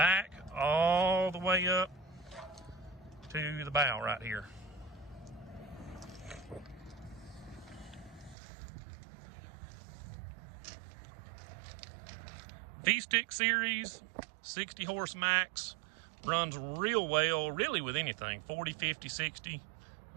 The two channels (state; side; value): drops out; left; at 8.3 s